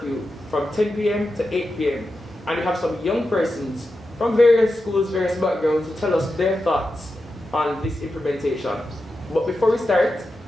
from 10 p.m. to 8 p.m. And we have some young persons from various schools, various backgrounds to tell us their thoughts on this implementation. But before we start,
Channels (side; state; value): both; normal; correlation 0.90